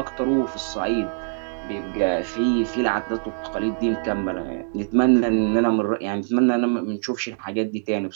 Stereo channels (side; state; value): left; silent; 63 dB below the other